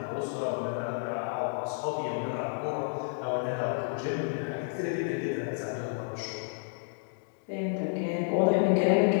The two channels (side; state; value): right; silent; digital silence